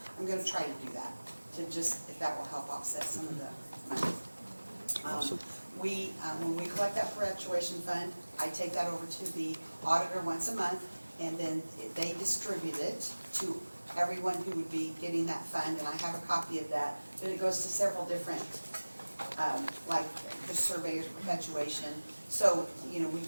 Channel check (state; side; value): inverted; both; correlation -1.00